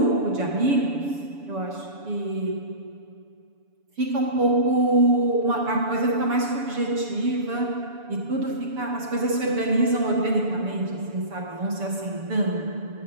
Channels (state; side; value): late; left; 7.0 ms